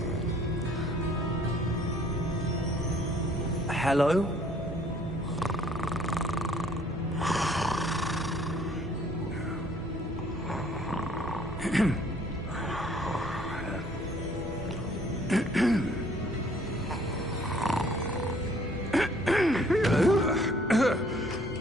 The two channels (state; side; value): normal; both; correlation 0.59